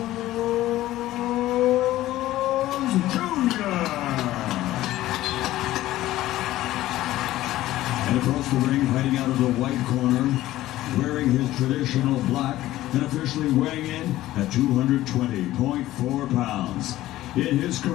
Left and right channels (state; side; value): quieter; right; 15.3 dB